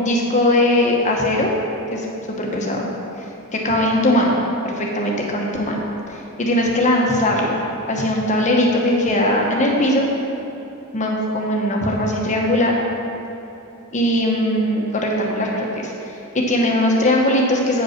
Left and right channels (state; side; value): normal; both; correlation 0.25